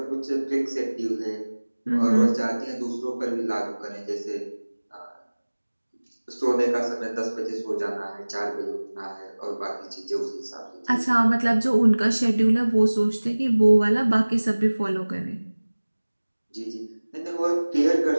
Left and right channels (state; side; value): inverted; both; correlation -1.00